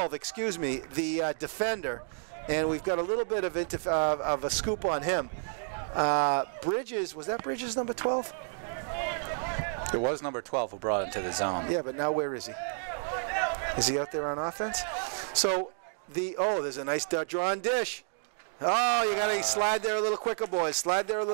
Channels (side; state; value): left; silent; digital silence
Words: the defender. And we've got a little bit of a scoop on him. Bridges, was that Bridges number 12? It was number 12 who brought him to the zone. Yeah, but now where is he? Is he out there on offense? So, there's a nice drawn dish. Oh, you got to slide there a little quicker, boys. Slide there a